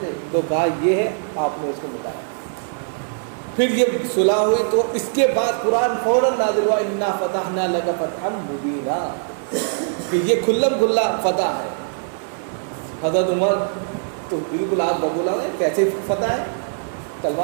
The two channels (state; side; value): silent; left; digital silence